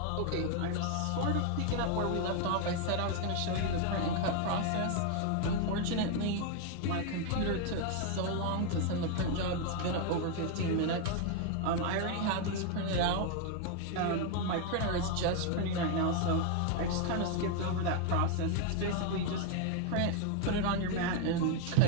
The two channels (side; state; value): both; different; correlation 0.00